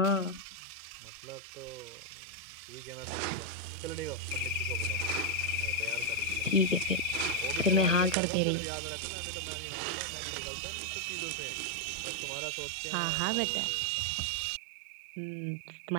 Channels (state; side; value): drops out; left; at 8.2 s